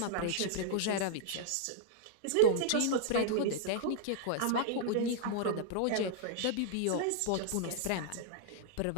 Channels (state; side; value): different; both; correlation -0.01